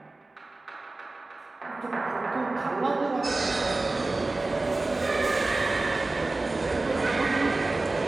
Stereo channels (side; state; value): left; quieter; 3.2 dB